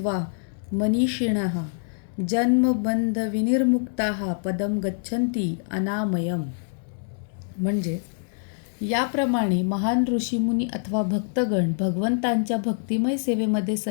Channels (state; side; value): silent; right; 62 dB below the other